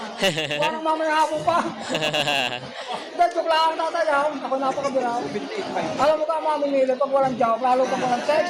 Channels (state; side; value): identical; both; correlation 1.00